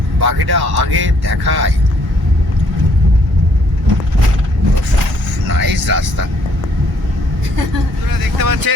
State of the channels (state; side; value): normal; both; correlation 0.66